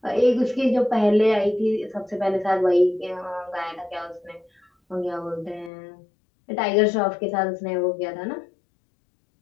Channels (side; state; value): right; drops out; at 5.7 s